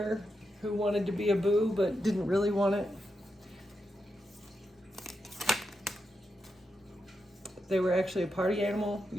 who wanted to be a boo but didn't really want it. They were actually a party animal.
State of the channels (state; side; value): normal; both; correlation 0.86